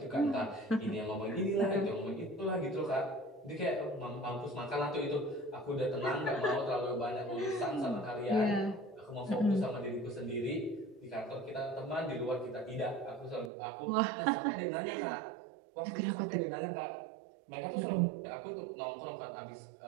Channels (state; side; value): drops out; left; at 13.5 s